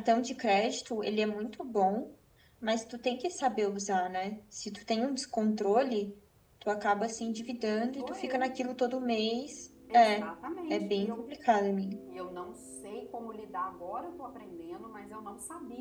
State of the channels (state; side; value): identical; both; correlation 1.00